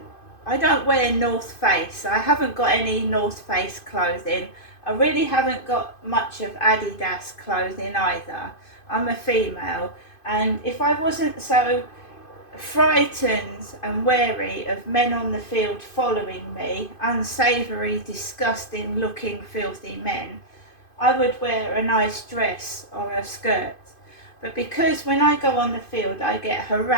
I don't wear North Face. I haven't got any North Face clothing. I really haven't got much of Adidas clothing either. I'm a female, and if I wasn't so frightened and wary of men on the field following me, unsavoury, disgusting looking, filthy men, I would wear a nice dress or a skirt. But because when I go on the field I get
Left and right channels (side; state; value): right; late; 2.5 ms